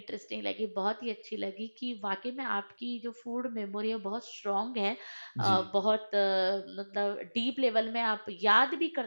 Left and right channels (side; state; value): both; inverted; correlation -1.00